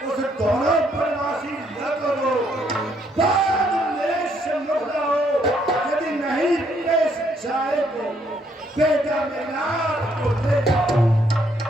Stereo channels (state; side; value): normal; both; correlation 0.70